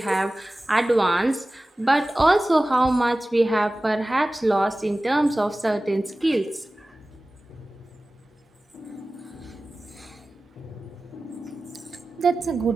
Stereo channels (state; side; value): normal; both; correlation 0.97